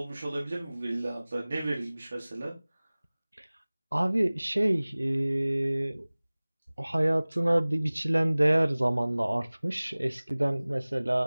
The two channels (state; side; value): inverted; both; correlation -0.99